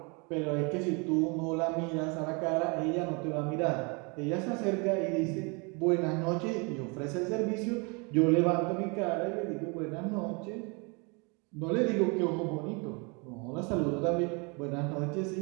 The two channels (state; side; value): quieter; left; 31.4 dB